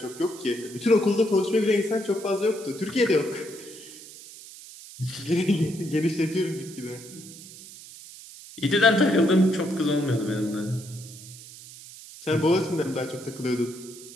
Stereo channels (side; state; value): right; noise; hiss, 17 dB below the sound